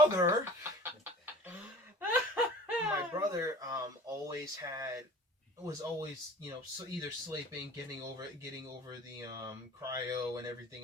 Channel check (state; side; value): normal; both; correlation 0.43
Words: was always either sleeping, getting over the cryo and